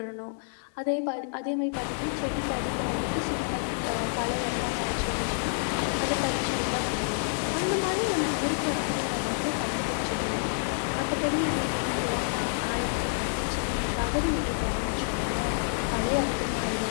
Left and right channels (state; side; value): silent; right; 59 dB below the other